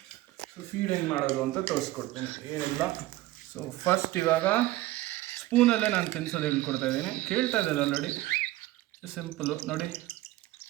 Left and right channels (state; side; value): quieter; left; 17.1 dB